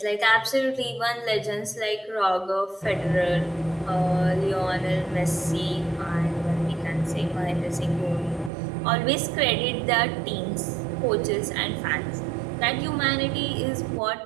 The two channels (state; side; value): drops out; left; at 8.5 s